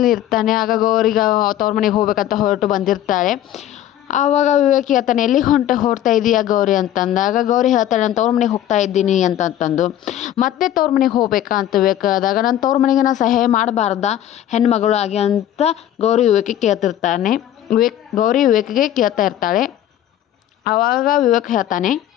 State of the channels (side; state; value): right; quieter; 11.8 dB